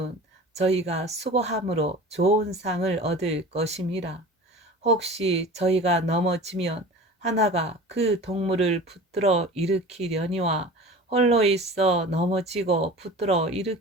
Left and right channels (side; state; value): both; normal; correlation 0.38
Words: 저희가 수고함으로 좋은 상을 얻을 것임이라. 혹시 저희가 넘어지면 하나가 그 동물을 붙들어 일으키려니와 홀로 있어 넘어지고 붙들어